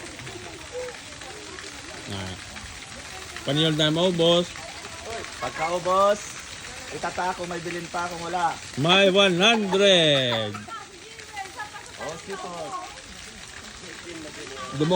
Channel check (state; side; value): identical; both; correlation 1.00